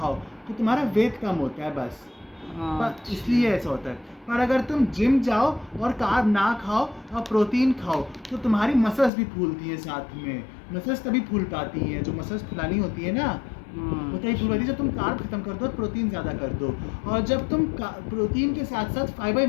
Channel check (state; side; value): drops out; right; at 9.1 s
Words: तो तुम्हारा वेट कम होता है बस, अच्छा। इसलिए ऐसा होता है। पर अगर तुम जिम जाओ और कार्ब ना खाओ और प्रोटीन खाओ तो तुम्हारी मसल्स भी फूलती हैं साथ में। मसल्स तभी फूल पाती हैं, जो मसल्स फुलानी होती है ना वो तभी फूल पाती है जब तुम कार्ब खत्म कर दो और प्रोटीन ज़्यादा कर दो। और जब तुम प्रोटीन के साथ साथ फाइबर